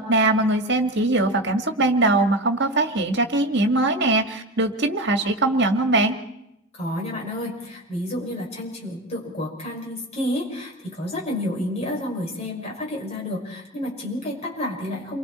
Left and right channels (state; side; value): normal; both; correlation 0.24